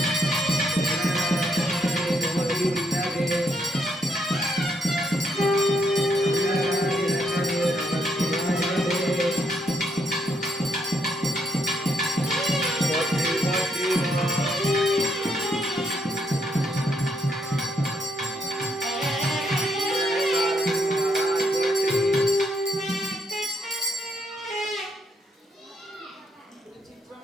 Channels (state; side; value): normal; both; correlation 0.75